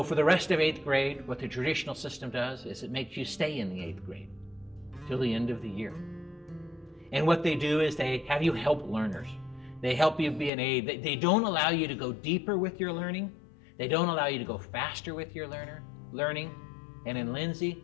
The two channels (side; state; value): right; drops out; at 10.5 s